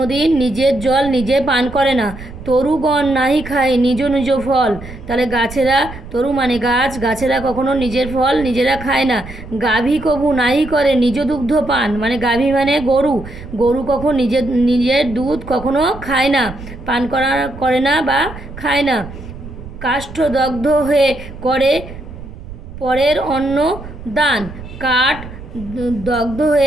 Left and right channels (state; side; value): noise; right; rumble, 14 dB below the sound